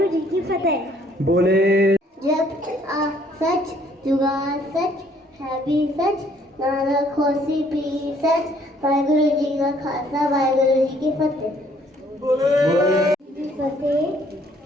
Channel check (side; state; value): both; normal; correlation 0.63